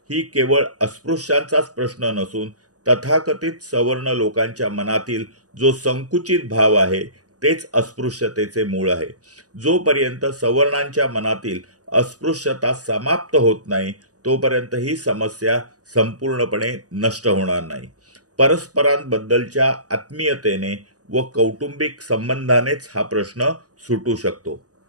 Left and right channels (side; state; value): left; late; 0.67 ms